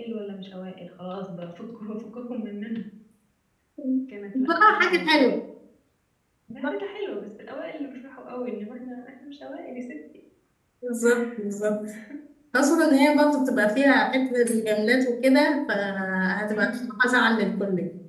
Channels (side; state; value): both; identical; correlation 1.00